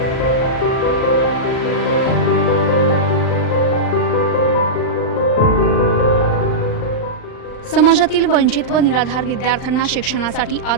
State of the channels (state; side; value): late; right; 39 ms